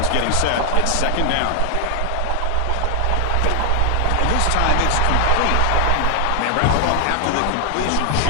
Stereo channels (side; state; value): both; different; correlation 0.00